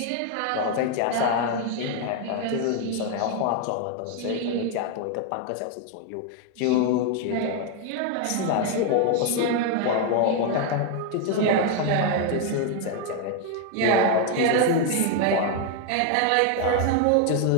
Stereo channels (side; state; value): both; different; correlation 0.01